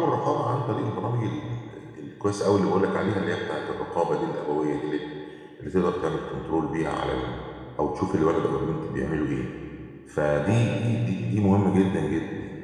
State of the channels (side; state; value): both; identical; correlation 1.00